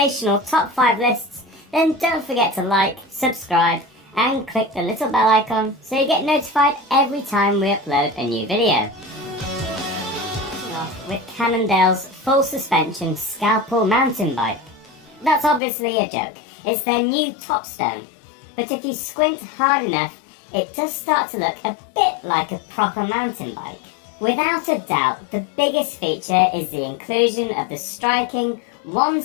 top 5 lists, then don't forget to like, subscribe and click the little bell icon so you get notified every time we upload a new video. Starting off with Cannondale's full suspension Scalpel mountain bike. That's obviously a joke. It's their new top stone, but if you squint hard enough, it does start to look a bit like a proper mountain bike. Without a doubt, the biggest feature is the inclusion of the striking,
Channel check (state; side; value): drops out; right; at 15.6 s